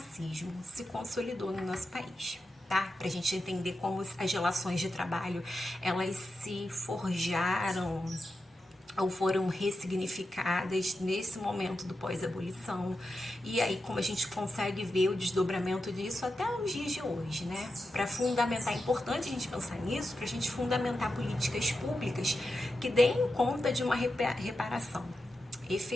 se consolidou no nosso país, tá? Para a gente entender como as relações de trabalho, elas se forjaram ou foram ressignificadas nesse momento do pós-abolição. E aí, como a gente consegue ver o desdobramento disso até os dias de hoje, né? Para fundamentar, é importante a gente pensar nisso, para a gente fundamentar políticas públicas que deem conta de uma reparação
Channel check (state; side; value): normal; both; correlation 0.89